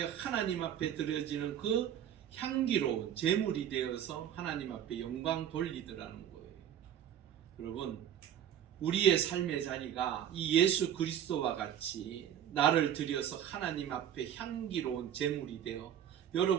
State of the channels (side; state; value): left; quieter; 10.0 dB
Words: 하나님 앞에 드려지는 그 향기로운 제물이 되어서 하나님 앞에 영광 돌리더라는 거예요. 여러분, 우리의 삶의 자리가 이 예수 그리스도와 같이 나를 들여서 하나님 앞에 향기로운 제물이 되어